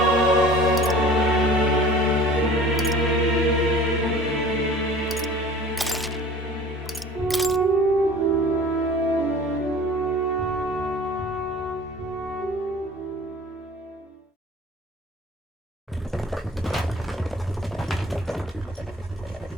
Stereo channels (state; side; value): normal; both; correlation 0.44